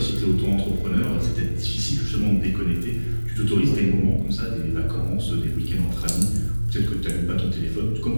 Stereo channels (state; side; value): inverted; both; correlation -1.00